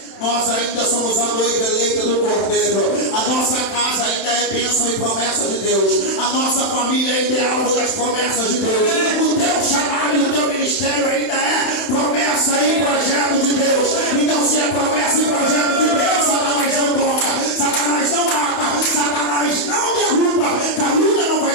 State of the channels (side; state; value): right; late; 31 ms